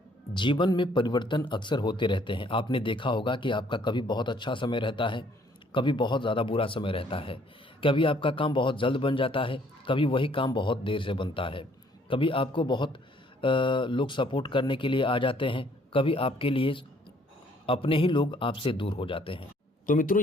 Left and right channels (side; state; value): both; normal; correlation 0.63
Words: जीवन में परिवर्तन अक्सर होते रहते हैं। आपने देखा होगा कि आपका कभी बहुत अच्छा समय रहता है, कभी बहुत ज़्यादा बुरा समय रहता है। कभी आपका काम बहुत जल्द बन जाता है, कभी वही काम बहुत देर से बनता है। कभी आपको बहुत लोग सपोर्ट करने के लिए आ जाते हैं, कभी आपके लिए अपने ही लोग आपसे दूर हो जाते हैं। तो मित्रों,